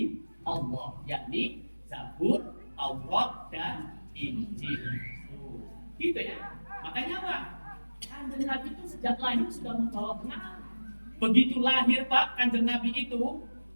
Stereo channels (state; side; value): inverted; both; correlation -1.00